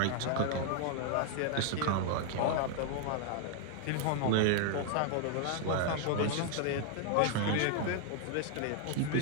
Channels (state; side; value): different; both; correlation 0.00